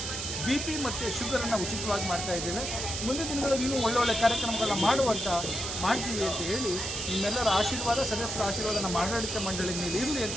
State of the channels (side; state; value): right; noise; hiss, 4 dB below the sound